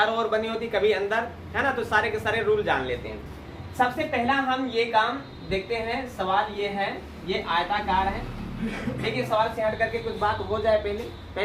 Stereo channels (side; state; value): both; identical; correlation 1.00